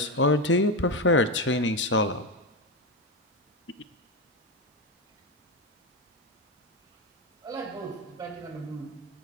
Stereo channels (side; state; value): both; normal; correlation 0.13